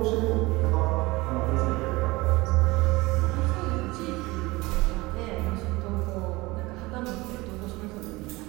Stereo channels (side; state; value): left; quieter; 21.8 dB